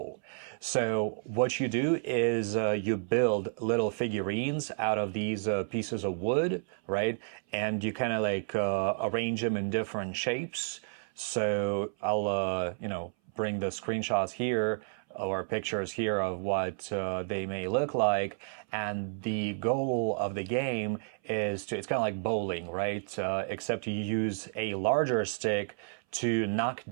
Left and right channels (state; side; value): silent; left; 57 dB below the other